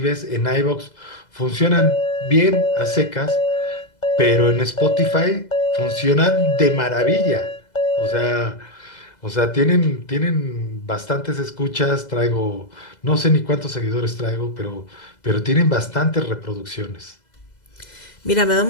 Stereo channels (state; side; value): late; right; 2.0 ms